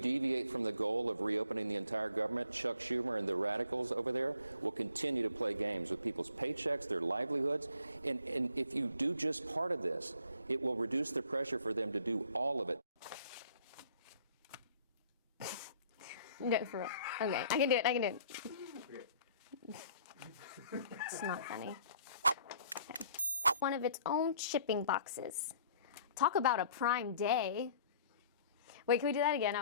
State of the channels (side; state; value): both; inverted; correlation -0.59